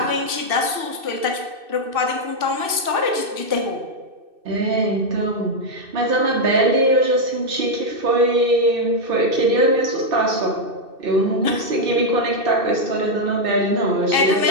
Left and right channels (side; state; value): left; late; 2.6 ms